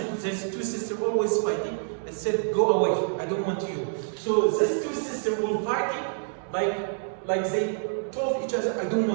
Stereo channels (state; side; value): silent; left; digital silence